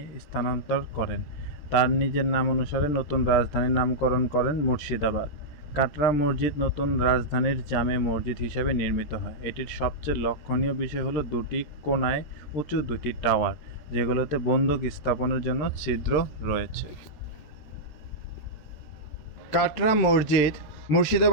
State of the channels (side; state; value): right; late; 13 ms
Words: স্থানান্তর করেন। তার নিজের নাম অনুসারে নতুন রাজধানীর নামকরণ করেন মুর্শিদাবাদ। কাটরা মসজিদ নতুন রাজধানীর জামে মসজিদ হিসাবে নির্মিত হয়। এটির সবচেয়ে লক্ষণীয় বিষয় হলো দুটি কোণায় উঁচু দুটি টাওয়ার, যেগুলোতে বন্দুক স্থাপনের জন্য ছিদ্র রয়েছে। কাটরা মসজিদ